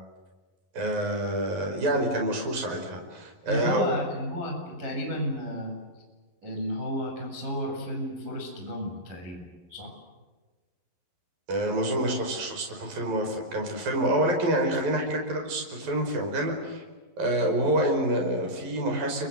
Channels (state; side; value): late; left; 11 ms